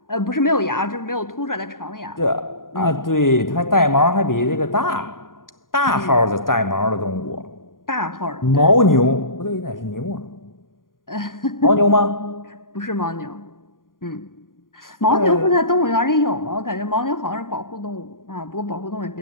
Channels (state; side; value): late; right; 0.90 ms